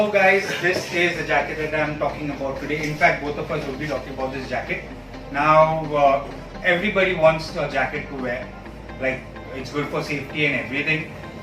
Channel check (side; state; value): both; identical; correlation 1.00